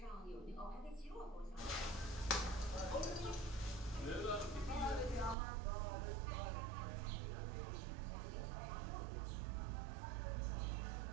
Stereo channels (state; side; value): drops out; left; at 5.4 s